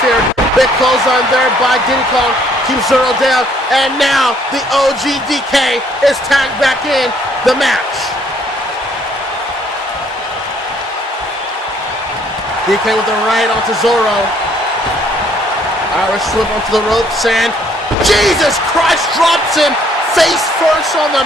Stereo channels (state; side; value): normal; both; correlation 0.64